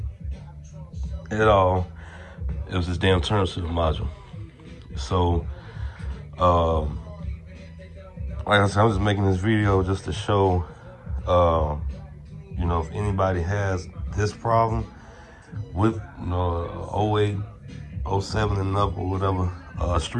at all. It was this damn turn signal module. So, like I said, I'm just making this video just to show, you know, if anybody has this problem with, you know, 08, 07 and up or whatever,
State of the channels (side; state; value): both; identical; correlation 1.00